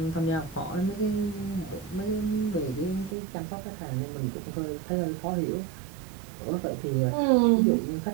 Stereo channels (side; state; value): left; drops out; at 3.2 s